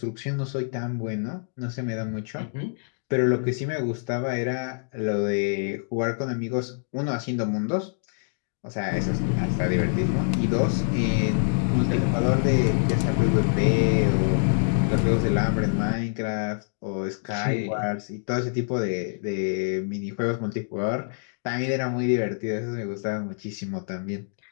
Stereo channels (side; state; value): right; silent; digital silence